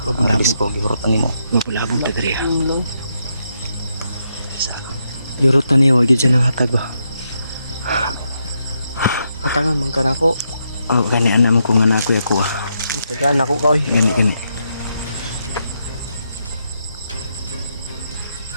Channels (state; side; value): inverted; both; correlation -0.81